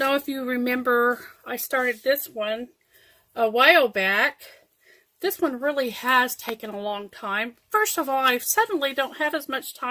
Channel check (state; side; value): identical; both; correlation 1.00